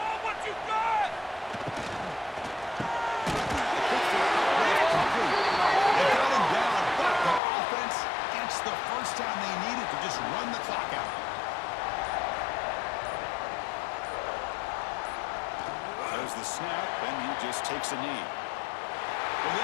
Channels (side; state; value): right; drops out; at 7.4 s